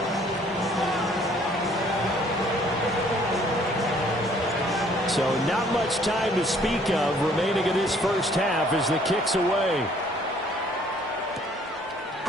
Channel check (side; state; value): both; normal; correlation 0.60